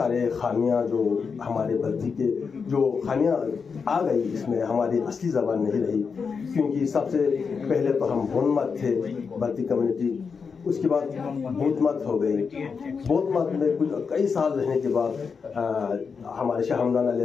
खामियां जो हमारे बल्ती के जो खामियां आ गई, इसमें हमारी असली ज़बान नहीं रही। क्योंकि सबसे पहले तो हम बोनमत थे बल्ती कम्युनिटी, उसके बाद बौद्ध मत हो गई। बौद्ध मत में कुछ कई साल रहने के बाद हमारे शाह हमदान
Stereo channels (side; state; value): right; quieter; 5.6 dB